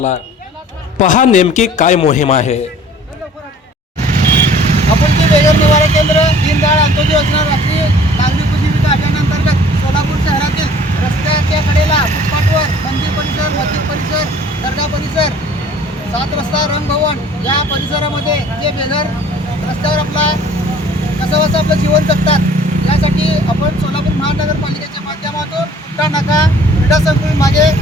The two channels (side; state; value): both; normal; correlation 0.51